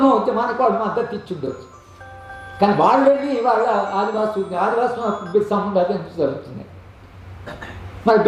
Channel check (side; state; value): both; identical; correlation 1.00